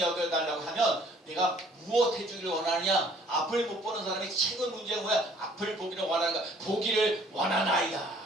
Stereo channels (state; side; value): normal; both; correlation 0.57